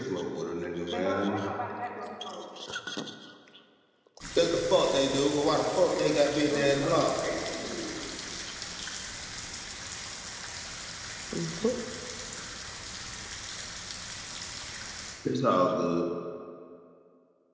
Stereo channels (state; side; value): identical; both; correlation 1.00